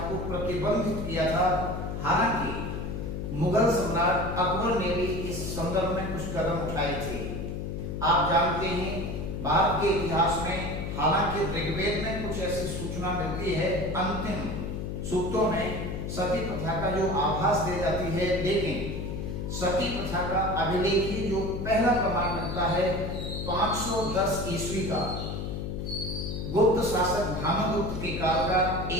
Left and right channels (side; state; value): left; noise; hum, 4 dB below the sound